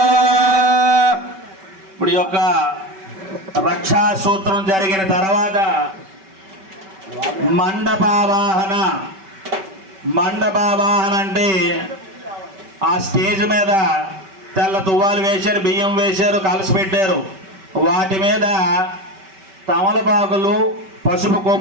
ఇప్పుడు ఈ యొక్క రక్షా సూత్రం జరిగిన తర్వాత మండపావాహన. మండపావాహన అంటే ఆ స్టేజ్ మీద తెల్ల తువ్వాలు వేశారు, బియ్యం వేశారు, కలసి పెట్టారు. వాటి మీద తమలపాకులు, పసుపు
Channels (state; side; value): late; left; 5.2 ms